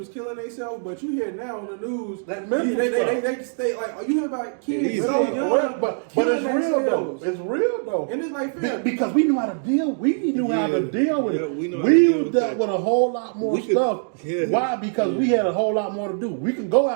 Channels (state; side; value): silent; left; digital silence